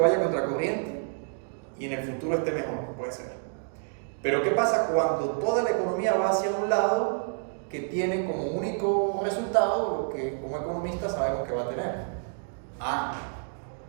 contracorriente y en el futuro esté mejor, puede ser. Pero ¿qué pasa cuando toda la economía va hacia un lado que tiene como único resultado lo que como economistas sabemos que va a tener?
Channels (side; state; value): left; silent; digital silence